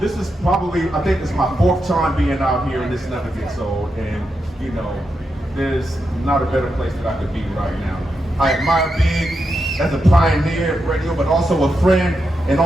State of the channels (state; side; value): normal; both; correlation 0.86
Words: probably, I think it's my 4th time being out here and this never gets old, and you know, there's not a better place that I could be right now. I admire Big as a pioneer of radio, but also a friend, and